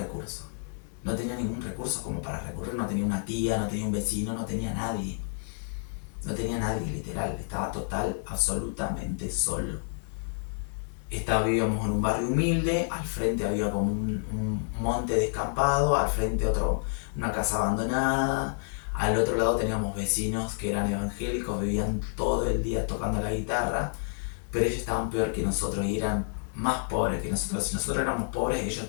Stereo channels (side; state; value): right; silent; digital silence